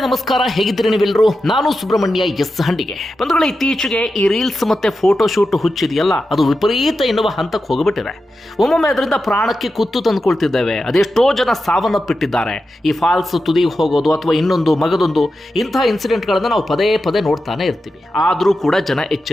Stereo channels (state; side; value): normal; both; correlation 0.90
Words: ನಮಸ್ಕಾರ, ಹೇಗಿದ್ದೀರಿ ನೀವೆಲ್ಲರೂ? ನಾನು ಸುಬ್ರಹ್ಮಣ್ಯ ಎಸ್ ಹಂಡಿಗೆ. ಬಂಧುಗಳೇ, ಇತ್ತೀಚೆಗೆ ಈ ರೀಲ್ಸ್ ಮತ್ತೆ ಫೋಟೋ ಶೂಟ್ ಹುಚ್ಚಿದೆಯಲ್ಲ, ಅದು ವಿಪರೀತ ಎನ್ನುವ ಹಂತಕ್ಕೆ ಹೋಗಿಬಿಟ್ಟಿದೆ. ಒಮ್ಮೊಮ್ಮೆ ಅದರಿಂದ ಪ್ರಾಣಕ್ಕೆ ಕುತ್ತು ತಂದುಕೊಳ್ತಿದ್ದೇವೆ. ಅದೆಷ್ಟೋ ಜನ ಸಾವನ್ನಪ್ಪಿಟ್ಟಿದ್ದಾರೆ. ಈ ಫಾಲ್ಸ್ ತುದಿಗೆ ಹೋಗೋದು ಅಥವಾ ಇನ್ನೊಂದು ಮಗದೊಂದು ಇಂತಹ ಇನ್ಸಿಡೆಂಟ್ಗಳನ್ನು ನಾವು ಪದೇ ಪದೇ ನೋಡ್ತಾನೆ ಇರ್ತೀವಿ. ಆದರೂ ಕೂಡ ಜನ